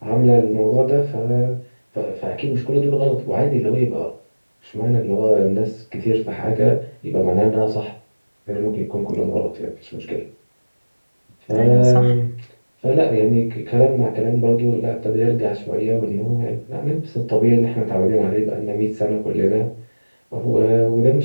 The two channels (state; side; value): inverted; both; correlation -1.00